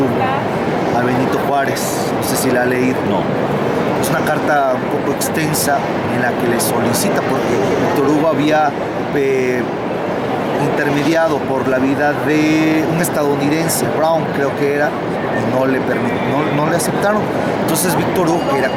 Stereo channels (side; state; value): both; identical; correlation 1.00